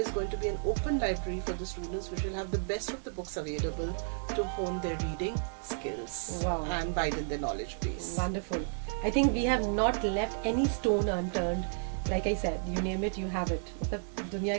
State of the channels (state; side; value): silent; left; digital silence